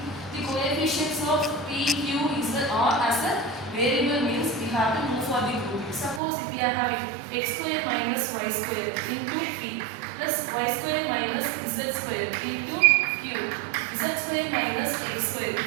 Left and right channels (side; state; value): left; drops out; at 6.2 s